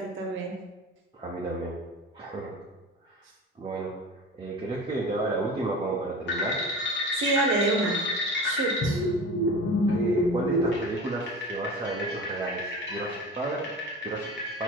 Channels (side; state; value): both; normal; correlation 0.34